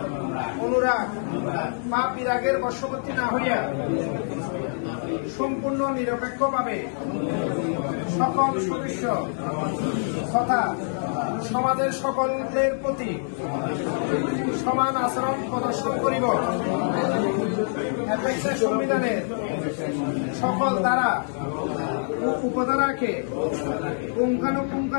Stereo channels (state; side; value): silent; right; 61 dB below the other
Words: অনুরাগ বা বিরাগের বশবর্তী না হইয়া সম্পূর্ণ নিরপেক্ষভাবে সকল সদস্য তথা সমাজের সকলের প্রতি সমান আচরণ প্রদর্শন করিব। অ্যাপেক্সের সংবিধানের সকল ধারা ও উপধারাকে